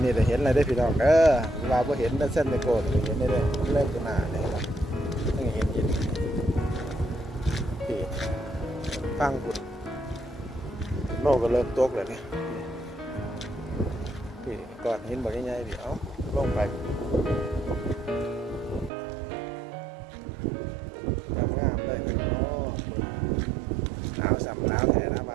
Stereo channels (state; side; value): drops out; left; at 18.9 s